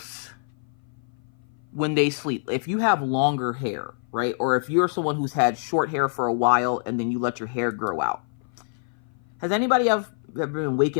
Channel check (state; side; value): silent; right; 56 dB below the other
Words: when they sleep, if you have longer hair, right? Or if you're someone who's had short hair for a while and then you let your hair grow out, has anybody ever been